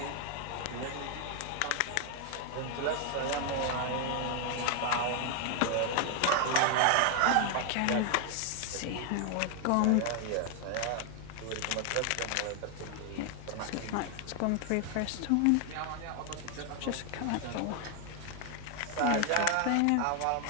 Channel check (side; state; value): both; different; correlation 0.00